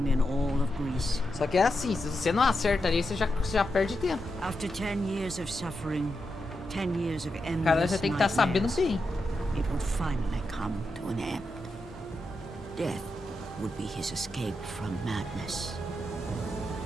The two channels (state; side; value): normal; both; correlation 0.87